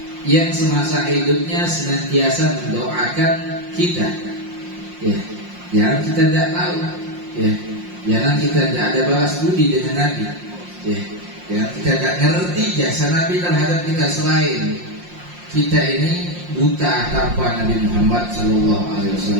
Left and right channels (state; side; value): late; left; 5.6 ms